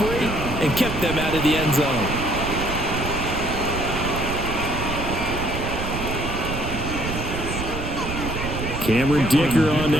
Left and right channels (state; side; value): noise; right; rumble, 5 dB below the sound